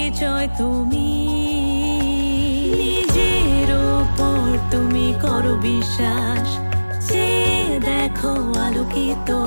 তুমি। নিজের ওপর তুমি করো বিশ্বাস, যে দেখো আলোকিত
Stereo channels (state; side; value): inverted; both; correlation -1.00